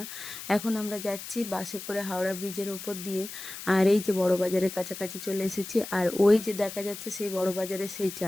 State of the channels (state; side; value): noise; left; hiss, 11 dB below the sound